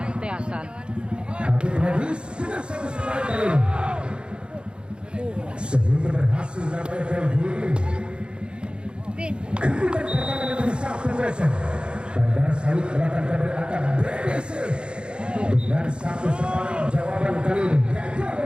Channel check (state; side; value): late; left; 0.054 ms